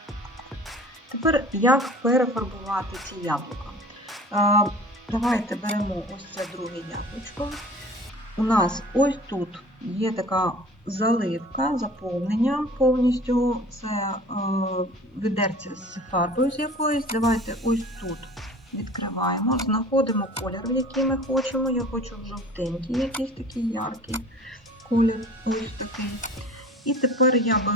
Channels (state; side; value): normal; both; correlation 0.44